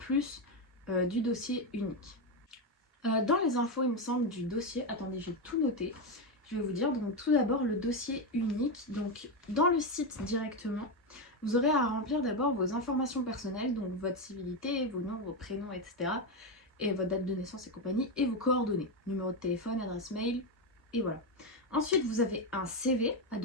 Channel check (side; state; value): both; normal; correlation 0.09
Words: du dossier unique. Dans les infos, il me semble, du dossier, attendez, j'ai tout noté, je vais vous dire. Donc tout d'abord, le dossier unique. Donc dans le site directement, vous aurez à remplir d'abord vos informations personnelles, donc votre civilité, vos noms, vos prénoms, etc. Et votre date de naissance et compagnie, et vos coordonnées, numéro de téléphone, adresse mail, et voilà. Ensuite, vous avez un CV à